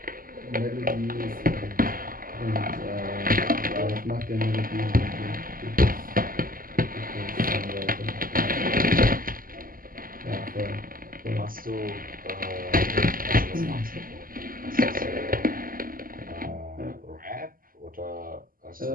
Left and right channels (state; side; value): late; left; 0.41 ms